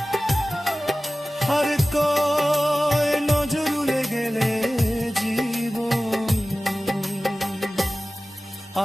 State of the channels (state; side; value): normal; both; correlation 0.97